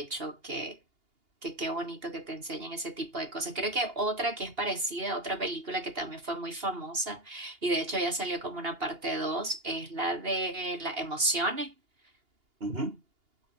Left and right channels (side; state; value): left; late; 2.8 ms